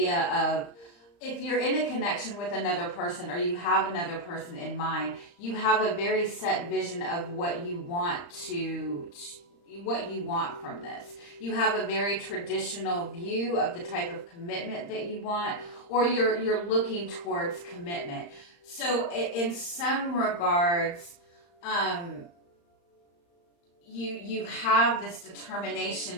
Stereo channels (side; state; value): right; late; 35 ms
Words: of, if you're in a connection with another person or you have another person in mind, you have a very set vision of what you want from this. You have a very traditional view of the type of commitment that you want, or you're looking towards commitment. So in some regards, you have this